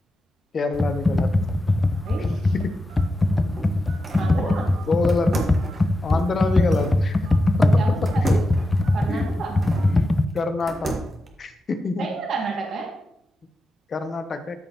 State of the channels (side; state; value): both; normal; correlation 0.90